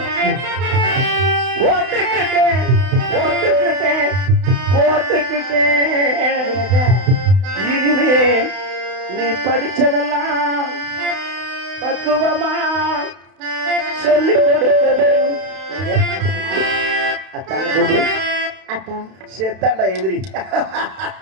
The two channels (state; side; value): late; left; 32 ms